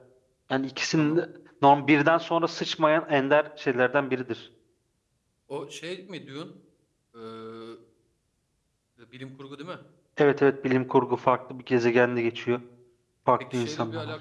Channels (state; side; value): identical; both; correlation 1.00